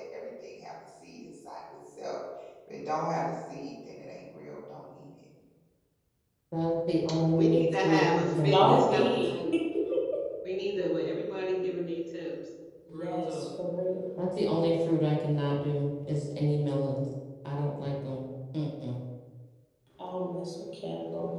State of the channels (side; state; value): both; identical; correlation 1.00